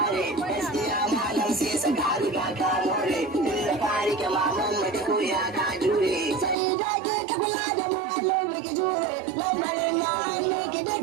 ne gaskiya malam sai saka riga ka more tun da fari ke maman mu da koya ka jure sai da ke ka kula da mu Allah miki jure lamarin na hannu ki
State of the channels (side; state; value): left; drops out; at 6.6 s